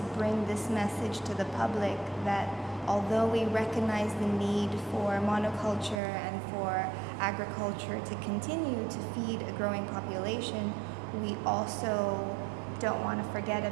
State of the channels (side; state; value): left; drops out; at 6.0 s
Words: bring this message to the public that although we recognize the need for monoculture and for agriculture to continue to feed a growing population, we also don't want to forget